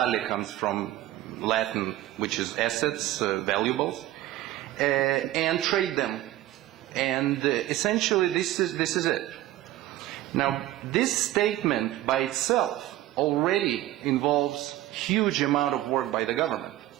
comes from Latin, which is assets, valuables, and trade them. And essentially, this is it. Now, this statement by itself already involves huge amount of work by the government,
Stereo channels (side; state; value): left; quieter; 15.1 dB